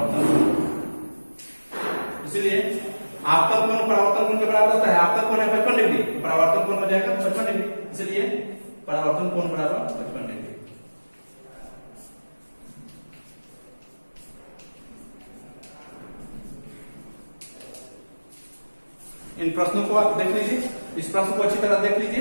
कोण, इसलिए आपतन कोण परावर्तन कोण के बराबर होता है। आपतन कोण है 55 डिग्री, तो परावर्तन कोण हो जाएगा 55 डिग्री, इसलिए परावर्तन कोण बराबर 55 डिग्री। इन प्रश्नों को आप देख लीजिए। इस प्रश्न को अच्छी तरह देख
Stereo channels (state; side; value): inverted; both; correlation -1.00